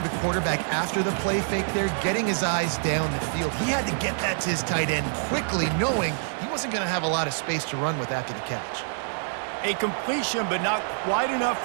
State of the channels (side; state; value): left; silent; 61 dB below the other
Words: the quarterback after the play fake there, getting his eyes down the field. He had to get that to his tight end quickly, knowing he wasn't going to have a lot of space to run with after the catch. A completion, but not quite enough